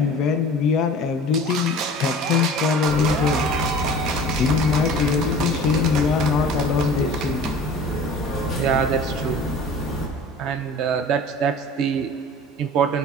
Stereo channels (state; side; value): normal; both; correlation 0.42